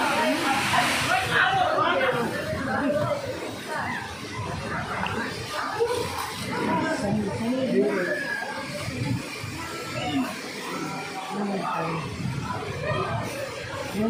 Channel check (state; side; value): identical; both; correlation 1.00